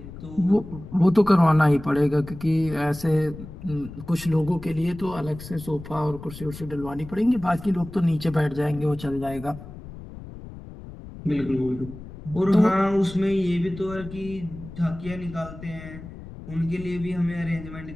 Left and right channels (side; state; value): left; noise; rumble, 14 dB below the sound